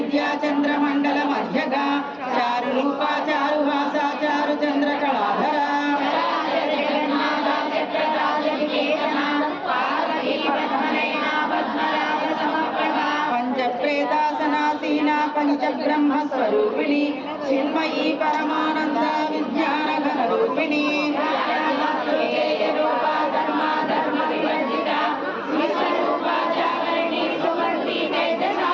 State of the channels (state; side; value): identical; both; correlation 1.00